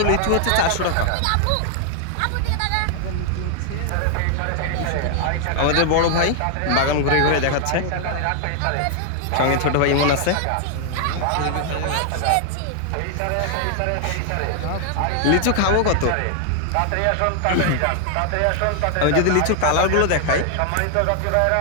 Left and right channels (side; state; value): both; different; correlation 0.00